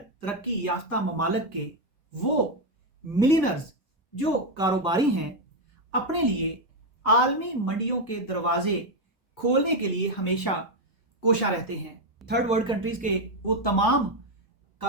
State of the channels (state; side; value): normal; both; correlation 0.05